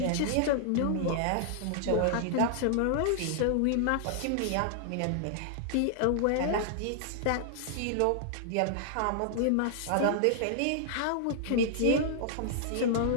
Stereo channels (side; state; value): both; different; correlation -0.01